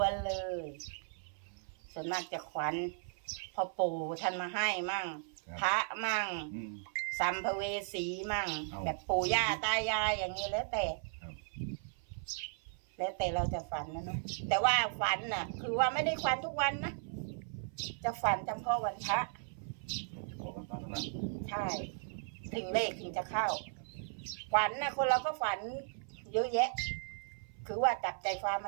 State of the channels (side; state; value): left; silent; 54 dB below the other